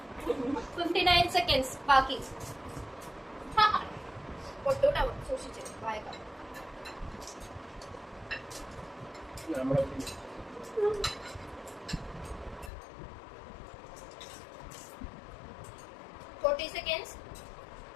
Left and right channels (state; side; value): drops out; right; at 12.7 s